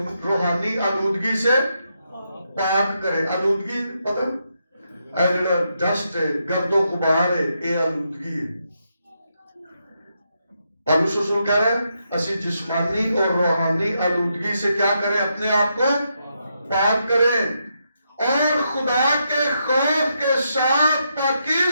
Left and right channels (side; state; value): both; inverted; correlation -0.82